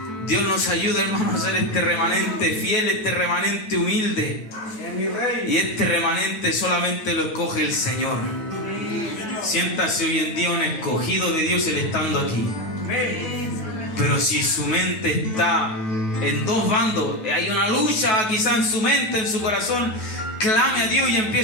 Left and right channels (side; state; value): right; late; 9.3 ms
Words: Dios nos ayuda, hermanos, a ser este remanente fiel, este remanente humilde. Y este remanente solamente lo escoge el Señor. Siéntase hoy en día un escogido de Dios, Él estando aquí. Pero si su mente está en dos bandos, hay una lucha quizá en su mente, en su corazón, clame a Dios y